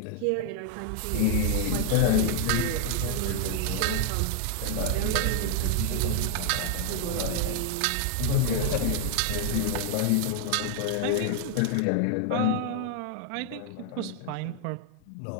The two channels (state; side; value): different; both; correlation 0.00